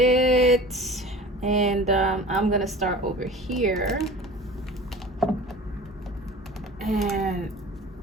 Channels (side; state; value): both; normal; correlation 0.40